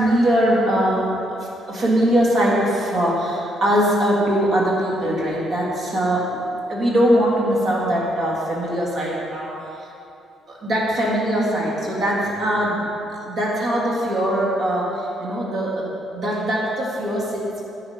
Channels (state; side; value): normal; both; correlation 0.74